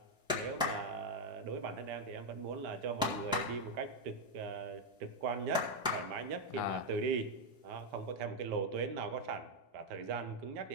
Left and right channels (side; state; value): both; normal; correlation 0.01